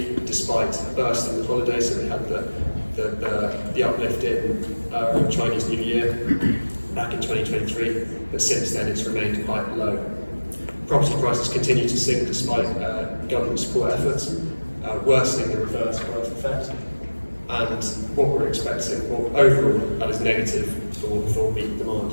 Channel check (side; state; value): both; inverted; correlation -1.00